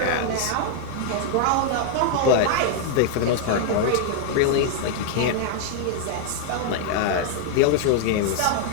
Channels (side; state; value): both; different; correlation 0.00